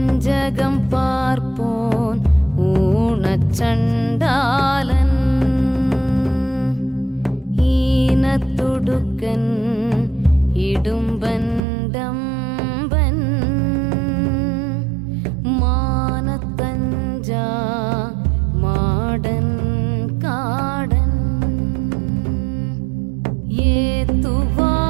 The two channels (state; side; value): drops out; left; at 11.6 s